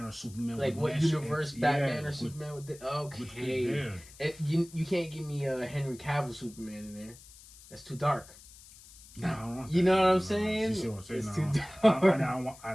or Superman like would what universe Batman or Superman would okay. You can't give me a Henry Cavill Superman in there. That's too dark. No, I don't want you that. know what I'm saying? You see what I'm saying? It's No. too dark.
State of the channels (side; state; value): left; noise; hiss, 21 dB below the sound